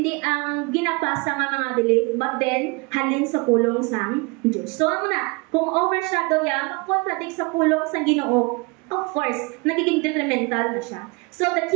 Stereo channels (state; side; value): quieter; left; 28.2 dB